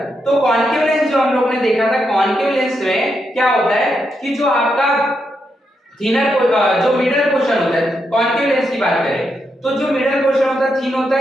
तो कॉनकेव लेंस जो हम लोग ने देखा था, कॉनकेव लेंस में क्या होता है कि जो आपका थिनर जो मिडल पोर्शन होता है, कॉन्केव लेंस की बात करें तो जो मिडल पोर्शन होता है थिन होता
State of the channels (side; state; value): both; normal; correlation 0.82